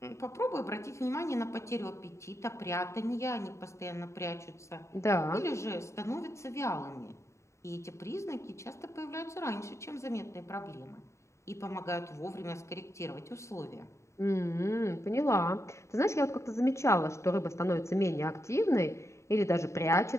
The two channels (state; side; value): late; right; 0.14 ms